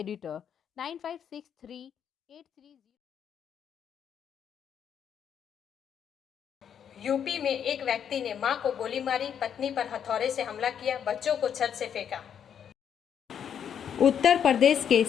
956383. UP में एक व्यक्ति ने मां को गोली मारी, पत्नी पर हथौड़े से हमला किया, बच्चों को छत से फेंका। उत्तर प्रदेश के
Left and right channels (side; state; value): right; quieter; 8.4 dB